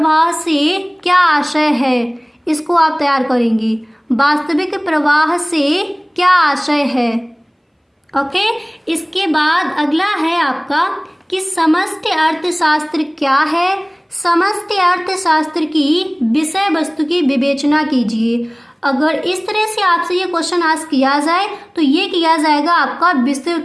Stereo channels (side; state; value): both; identical; correlation 1.00